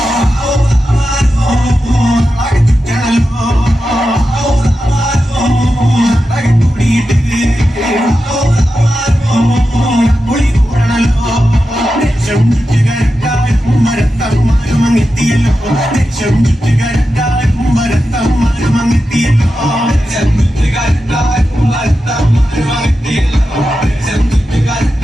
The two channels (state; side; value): normal; both; correlation 0.91